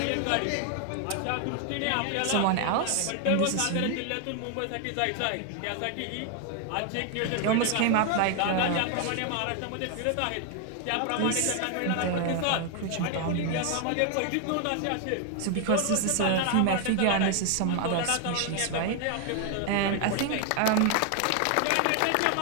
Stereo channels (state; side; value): different; both; correlation 0.00